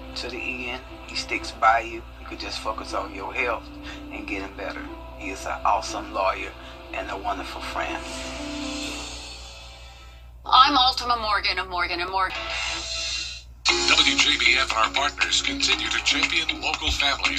to the end. He sticks by you. You could just focus on your health and getting better. He is an awesome lawyer and a wonderful friend. I'm Ultima Morgan of Morgan & Morgan. WJBF and our partners continue to champion local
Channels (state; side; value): identical; both; correlation 1.00